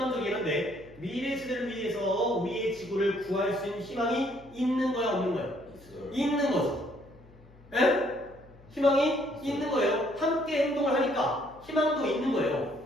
한데 미래 세대를 위해서 우리의 지구를 구할 수 있는 희망이 있는 거야 없는 거야? 있는 거죠. 에? 희망이 있는 거예요. 함께 행동을 하니까 희망도 있는 거예요.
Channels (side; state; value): left; noise; hum, 24 dB below the sound